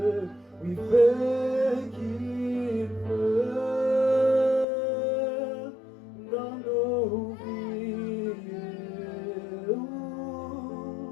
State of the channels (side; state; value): right; drops out; at 4.7 s